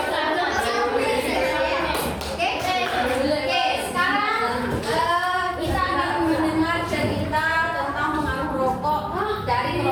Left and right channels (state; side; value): identical; both; correlation 1.00